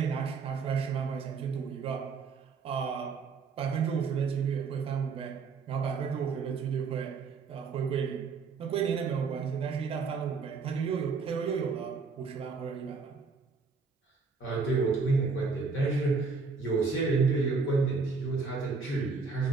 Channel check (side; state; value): left; quieter; 4.8 dB